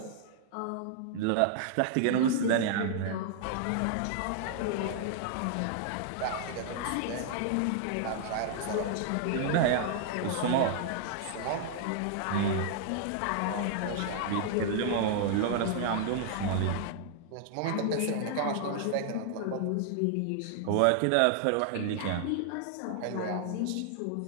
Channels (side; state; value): both; different; correlation -0.01